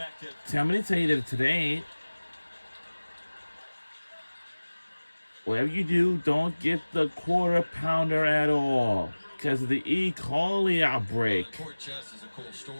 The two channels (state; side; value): inverted; both; correlation -1.00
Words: tell me to tell you that today, whatever you do, don't get the quarter pounder at all because of the E. coli outbreak. Court Chess is a cool